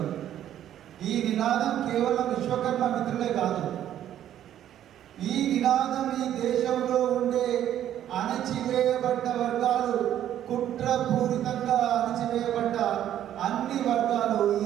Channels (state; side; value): quieter; left; 11.2 dB